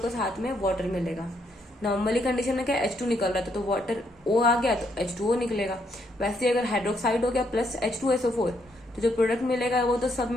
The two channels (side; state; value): both; normal; correlation 0.74